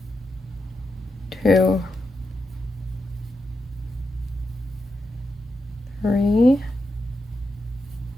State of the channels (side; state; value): both; normal; correlation 0.86